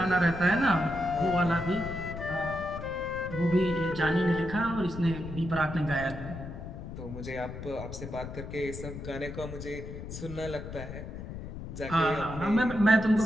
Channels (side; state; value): left; noise; rumble, 9 dB below the sound